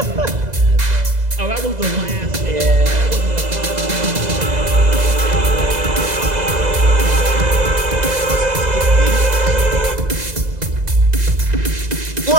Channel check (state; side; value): late; left; 2.0 ms